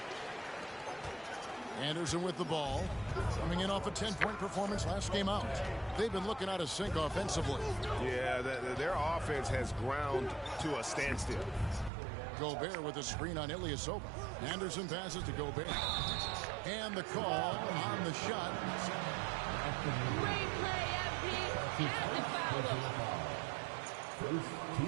Anderson with the ball, coming in off a 10-point performance last game out. They've been looking out of sync offensively. Yeah, their offense has ground to a standstill. Gobert with a screen on Ilyasova. Anderson passes to Gobert. And the call on the shot. Great play, FP. And the foul. First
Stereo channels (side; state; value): left; drops out; at 11.9 s